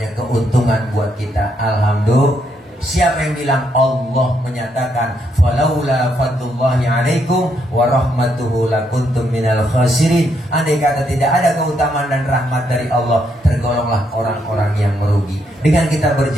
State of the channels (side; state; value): both; normal; correlation 0.76